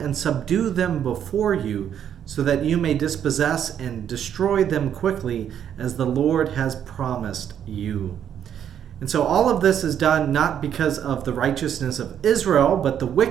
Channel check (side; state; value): left; quieter; 9.3 dB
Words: subdue them before you, so that you may dispossess and destroy them quickly, as the Lord has promised you. And so all of this is done not because of the righteousness of Israel, but the